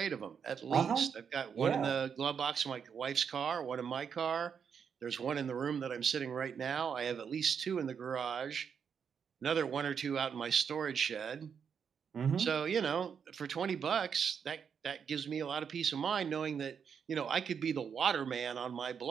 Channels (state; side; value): quieter; left; 7.0 dB